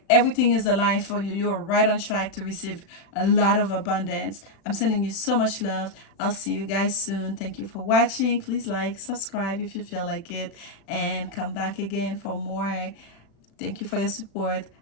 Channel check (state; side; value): late; right; 36 ms